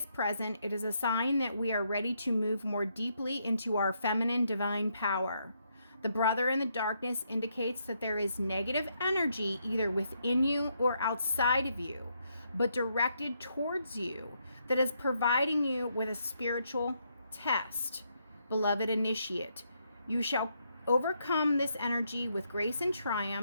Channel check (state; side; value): inverted; both; correlation -0.77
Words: present, it is a sign that we are ready to move more deeply into our feminine divine power. The brother in the darkness indicates that there is negative energy either within you or outside of you, but directed towards you, that is providing you with a spiritual test. Beloved initiate, you shall overcome this energy with grace and